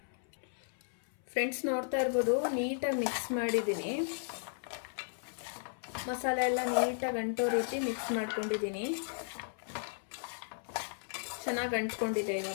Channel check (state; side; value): silent; right; 54 dB below the other